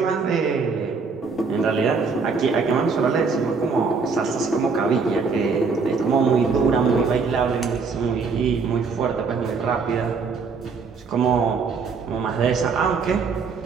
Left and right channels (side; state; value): left; quieter; 5.0 dB